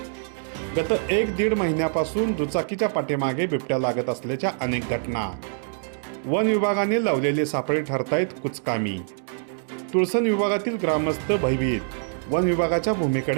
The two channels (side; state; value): left; silent; digital silence